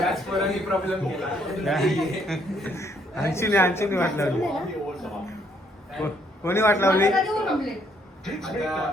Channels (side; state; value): both; normal; correlation 0.69